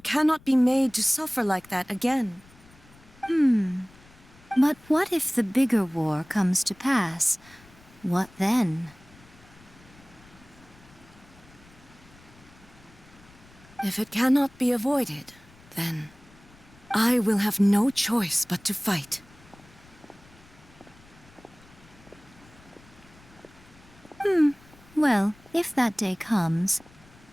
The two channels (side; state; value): left; noise; rumble, 25 dB below the sound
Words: cannot be made to suffer like that again. But what if the bigger war comes to pass? What then? If it cannot be avoided, then I will have no choice but to fight. Well, if that day comes,